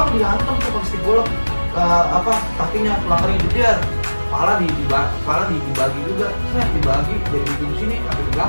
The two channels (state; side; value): inverted; both; correlation -1.00